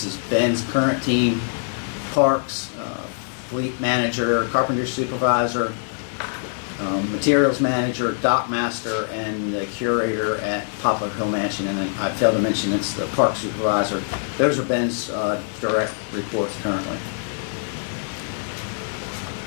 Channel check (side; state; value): right; silent; 55 dB below the other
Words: is Ben's current team, parks, fleet manager, carpenter supervisor, materials manager, dock master, and the curator at Poplar Hill Mansion. And then I failed to mention it's the park supervisor. Those are Ben's direct reports currently.